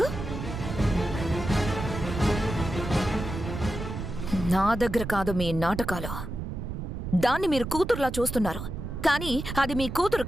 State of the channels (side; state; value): right; noise; rumble, 6 dB below the sound